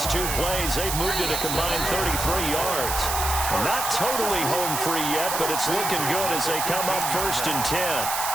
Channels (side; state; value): right; noise; hiss, 2 dB below the sound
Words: 2 plays. They've moved it a combined 33 yards. Not totally home free yet, but it's looking good as they come up 1st and 10.